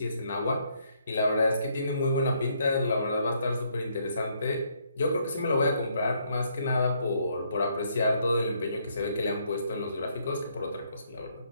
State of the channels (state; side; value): inverted; both; correlation -0.71